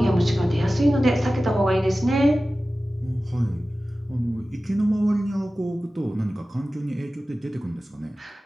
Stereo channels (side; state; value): both; normal; correlation 0.96